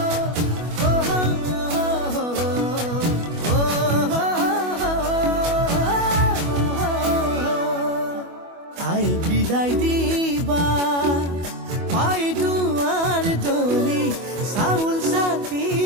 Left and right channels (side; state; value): left; late; 25 ms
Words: আই বিদায় দিবা পাই দুৱাৰ দলি চাউল চাতি